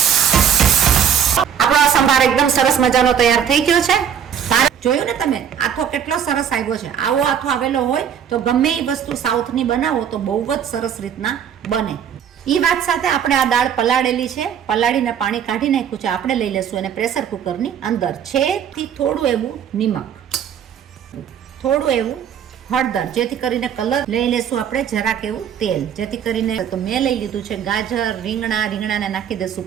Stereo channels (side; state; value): left; quieter; 8.5 dB